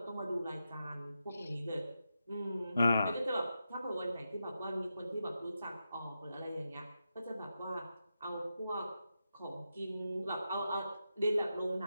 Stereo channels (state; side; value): inverted; both; correlation -0.88